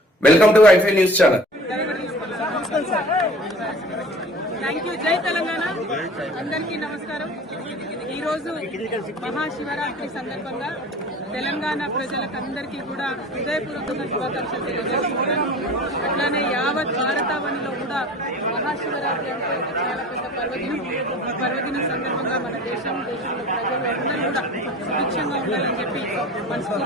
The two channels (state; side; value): normal; both; correlation 0.43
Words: వెల్కమ్ టు ఐఫై న్యూస్ ఛానల్. Thank you. జై తెలంగాణ. అందరికీ నమస్కారం. ఈరోజు మహాశివరాత్రి సందర్భంగా తెలంగాణ ప్రజలకందరికీ కూడా హృదయపూర్వకంగా శుభాకాంక్షలు తెలియజేస్తున్నాను. అట్లానే యావత్ భారతావనిలో కూడా మహాశివరాత్రి అంటే చాలా పెద్ద పర్వదినం. ఈ పర్వదినం సందర్భంగా మన దేశంలో ప్రజలు అందరూ కూడా సుభిక్షంగా ఉండాలని చెప్పి